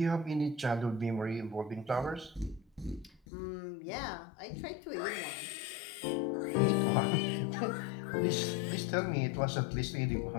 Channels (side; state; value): right; drops out; at 3.2 s